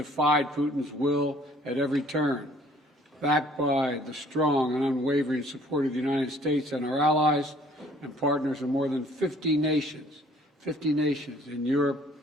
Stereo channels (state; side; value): normal; both; correlation 0.57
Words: Putin's will at every turn, backed by the strong and unwavering support of the United States and our allies and partners in more than 50 nations in Europe